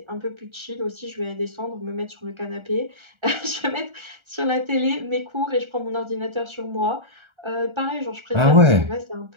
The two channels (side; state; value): left; late; 1.3 ms